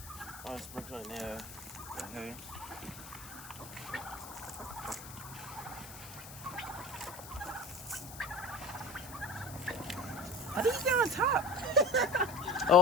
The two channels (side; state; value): left; noise; hiss, 14 dB below the sound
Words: I'll sprinkle it there. Okay. How do you get on top?